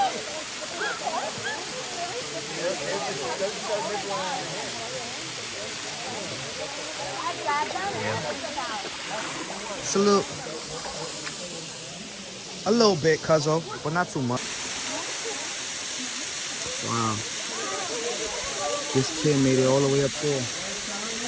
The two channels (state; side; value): identical; both; correlation 1.00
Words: It's a little bit, cuzzo, but not too much. Wow. This kid made it all the way up there.